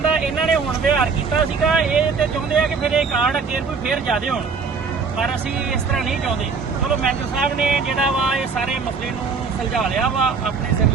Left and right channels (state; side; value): quieter; left; 5.1 dB